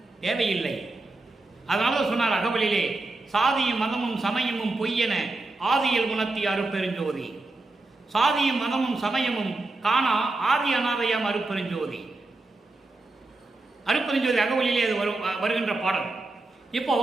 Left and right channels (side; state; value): left; quieter; 3.1 dB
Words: தேவையில்லை. அதனால சொன்னார் அகவலிலே, சாதியும் மதமும் சமயமும் பொய்யென ஆதியில் உணர்த்திய அருப்பெருஞ்சோதி, சாதியும் மதமும் சமயமும் காணா ஆதி அநாதையாம் அருப்பெருஞ்சோதி. அருப்பெருஞ்சோதி அகவலிலே அது வருகின்ற பாடல். இப்போ